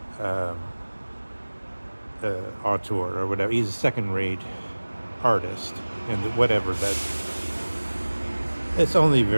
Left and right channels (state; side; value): inverted; both; correlation -1.00